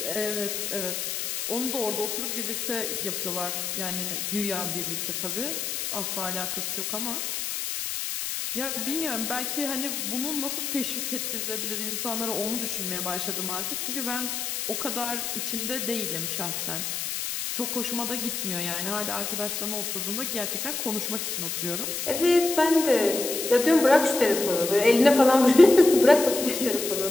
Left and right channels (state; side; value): noise; left; hiss, 3 dB below the sound